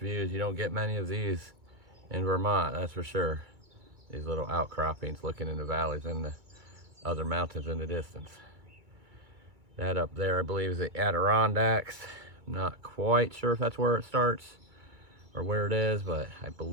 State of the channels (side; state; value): left; late; 2.3 ms